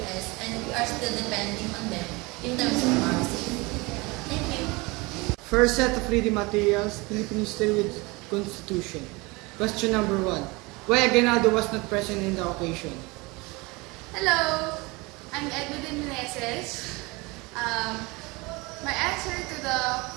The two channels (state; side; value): quieter; left; 25.1 dB